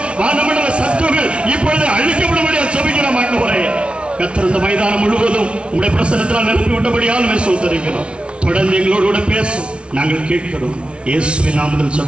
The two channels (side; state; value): left; late; 0.059 ms